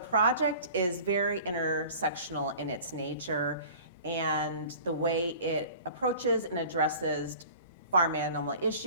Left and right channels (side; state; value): both; inverted; correlation -0.43